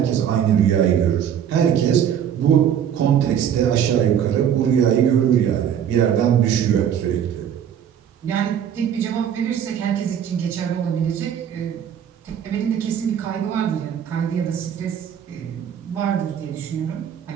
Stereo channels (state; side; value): quieter; left; 9.0 dB